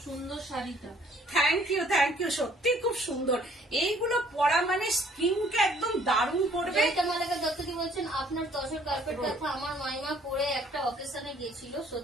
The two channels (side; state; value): both; normal; correlation 0.59